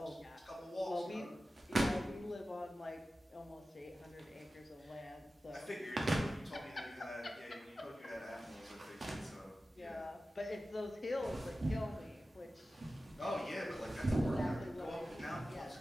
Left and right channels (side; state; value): both; normal; correlation 0.95